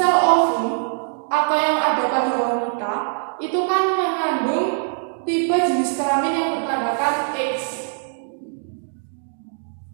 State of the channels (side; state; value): left; silent; digital silence